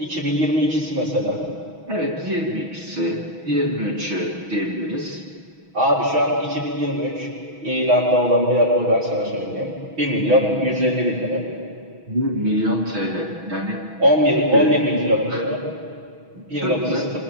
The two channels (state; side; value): late; left; 6.2 ms